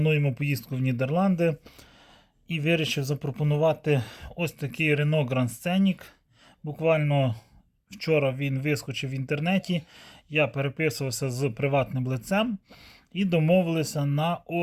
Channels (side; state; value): both; identical; correlation 1.00